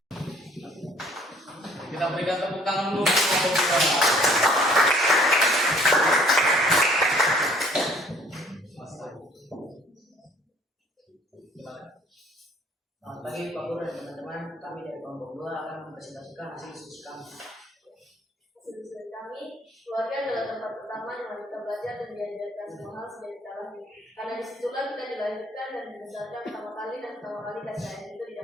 Kita berikan tepuk tangan dulu untuk kelompok 2. Selamat pagi Pak Guru dan teman-teman. Kami dari kelompok 2 akan mempresentasikan hasil diskusi kami. Hasil kami, keluarga adalah tempat pertama di mana kita belajar dan diajarkan semua hal sejak kita lahir. Karena disitulah kita dilahirkan dan dibesarkan pertama kali kasih sayang itu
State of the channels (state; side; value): normal; both; correlation 0.57